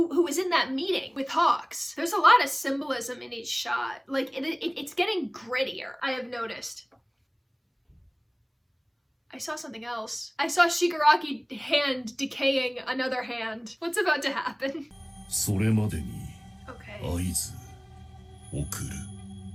was in that meeting with Hawks. There's a lot of symbolism in each shot. Like it's getting grittier, I have noticed. I saw something else. I saw Shigaraki hand decaying another hand. What's about to happen? Okay.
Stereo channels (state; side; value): identical; both; correlation 1.00